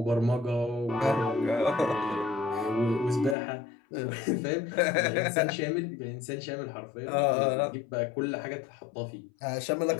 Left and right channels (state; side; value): drops out; right; at 3.4 s